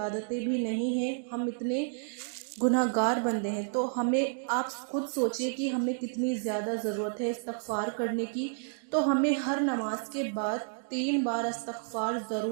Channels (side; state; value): left; silent; digital silence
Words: بھی نہیں ہیں، ہم اتنے گناہگار بندے ہیں۔ تو آپ خود سوچئے کہ ہمیں کتنی زیادہ ضرورت ہے استغفار کرنے کی۔ تو ہمیں ہر نماز کے بعد 3 بار استغفار